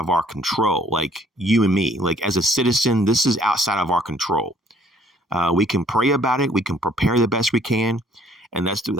our control, like you and me. Like as a citizen, this is outside of our control. We can pray about it. We can prepare the best we can. And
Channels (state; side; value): normal; both; correlation 0.60